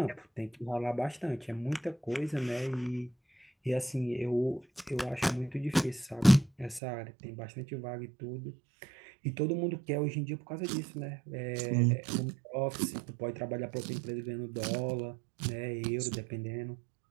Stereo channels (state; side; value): drops out; left; at 6.8 s